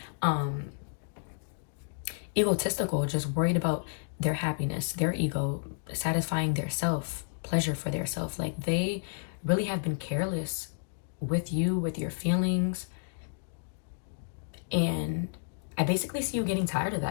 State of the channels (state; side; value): silent; right; digital silence